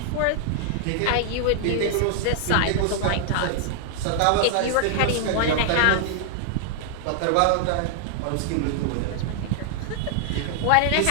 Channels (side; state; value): both; different; correlation 0.00